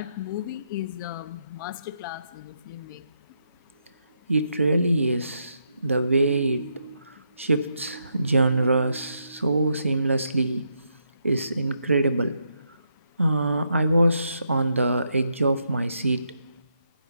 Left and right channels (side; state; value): both; inverted; correlation -0.80